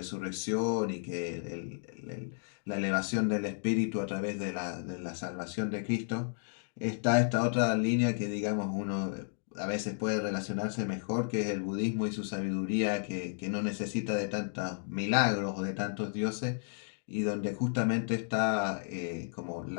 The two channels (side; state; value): right; silent; digital silence